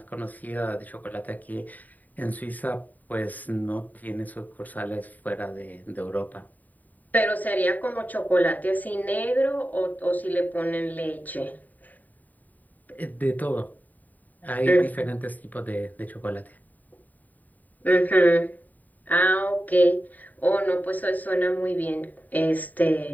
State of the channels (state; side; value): late; right; 0.082 ms